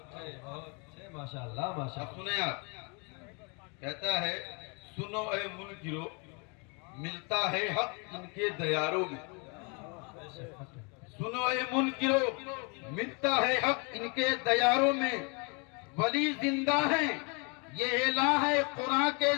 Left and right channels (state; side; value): quieter; right; 33.5 dB